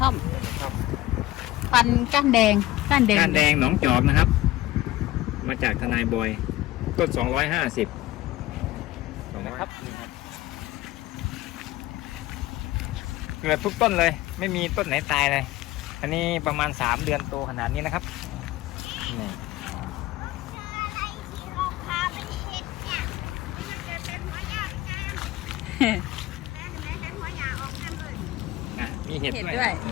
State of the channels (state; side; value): quieter; right; 16.6 dB